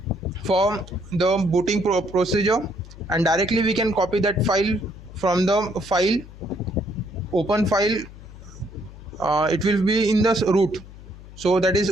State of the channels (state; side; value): noise; left; hum, 17 dB below the sound